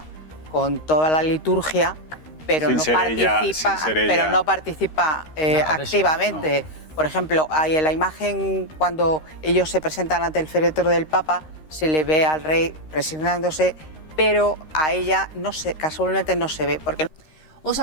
con toda la liturgia, pero no participa activamente. Por ejemplo, hay en la imagen cuando ellos se presentan ante el féretro del Papa, se le ve al rey presionándose, pero a ella casualmente no se ve. Porque... ¿Os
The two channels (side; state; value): right; late; 13 ms